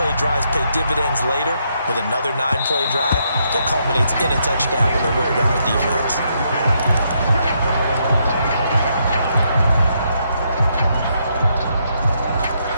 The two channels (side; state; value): both; inverted; correlation -0.76